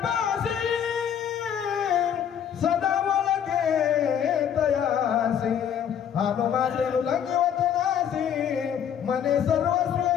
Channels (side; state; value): right; quieter; 8.8 dB